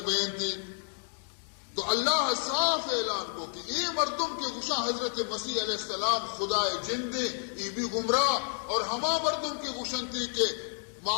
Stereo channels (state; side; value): silent; right; 58 dB below the other